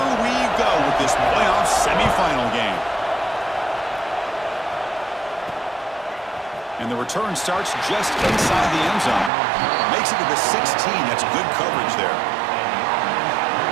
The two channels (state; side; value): drops out; left; at 9.3 s